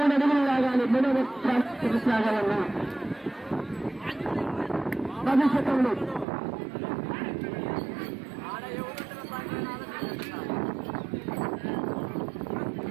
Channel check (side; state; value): left; drops out; at 6.2 s